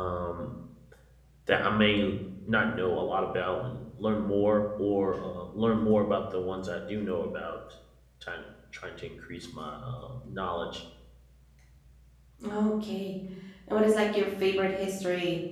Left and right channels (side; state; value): both; identical; correlation 1.00